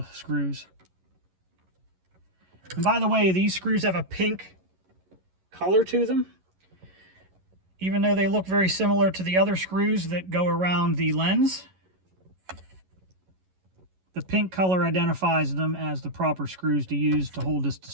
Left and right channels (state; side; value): late; left; 11 ms